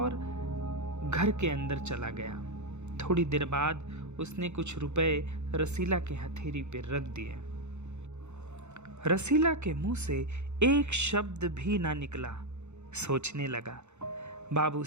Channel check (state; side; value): late; left; 0.83 ms